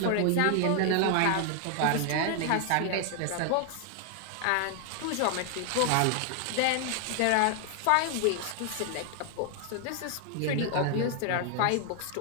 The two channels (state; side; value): different; both; correlation 0.00